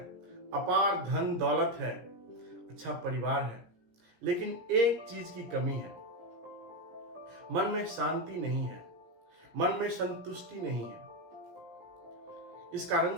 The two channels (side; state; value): left; late; 17 ms